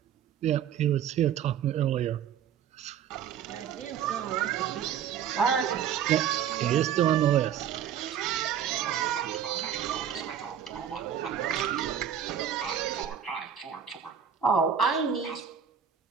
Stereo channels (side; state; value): left; quieter; 8.8 dB